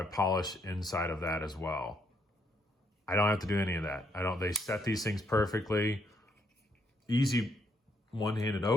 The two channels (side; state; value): both; normal; correlation 0.73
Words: polish inside of that as well. I don't have to do any of that. They set these things perfectly. Easy one-handed